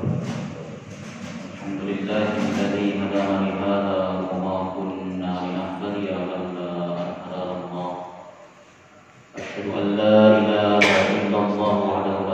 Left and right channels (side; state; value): both; identical; correlation 1.00